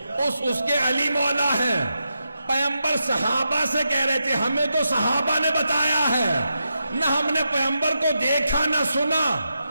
اس کے علی مولا ہے، پیغمبر صحابہ سے کہہ رہے تھے ہمیں تو صحابہ نے بتایا ہے، نہ ہم نے پیغمبر کو دیکھا نہ سنا،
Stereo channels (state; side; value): inverted; both; correlation -0.86